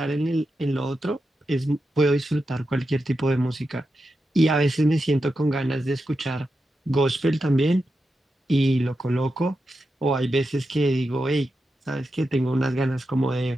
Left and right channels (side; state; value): both; normal; correlation 0.89